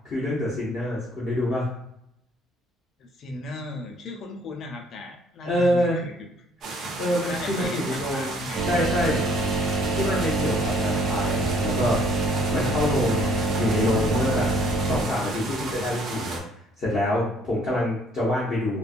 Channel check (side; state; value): both; normal; correlation 0.61